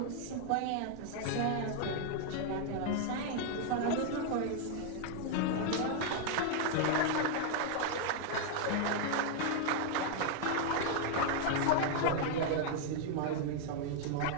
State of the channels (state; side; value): different; both; correlation 0.00